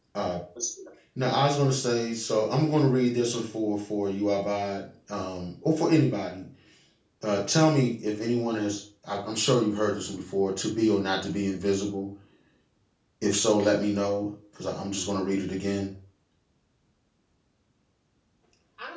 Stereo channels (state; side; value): identical; both; correlation 1.00